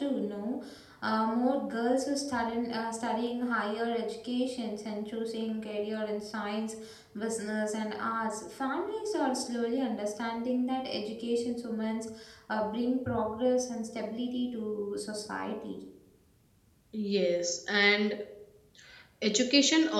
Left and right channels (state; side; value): identical; both; correlation 1.00